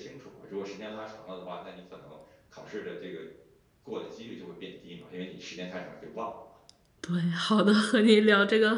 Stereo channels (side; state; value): both; identical; correlation 1.00